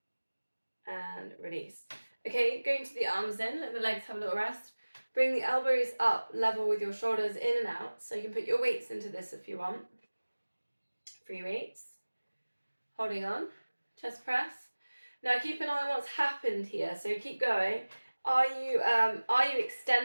And release. Okay, going to the arms in, let the legs have a little rest. Bring the elbows up, level with your shoulders in and out. So you can put your weights into this if you want. Free weights. Holding on. Chest press. Now keep an eye on what's happened here. So keep going. Are you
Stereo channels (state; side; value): inverted; both; correlation -1.00